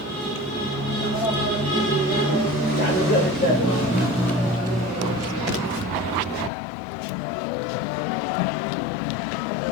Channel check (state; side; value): drops out; right; at 6.5 s